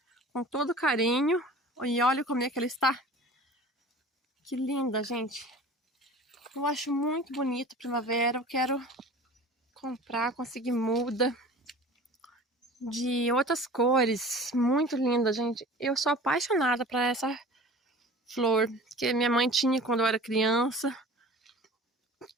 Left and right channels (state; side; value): normal; both; correlation 0.41